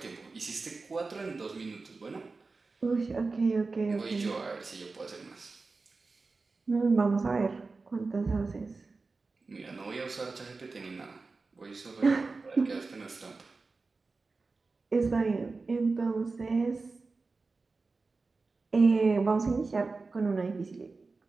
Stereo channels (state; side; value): quieter; left; 3.9 dB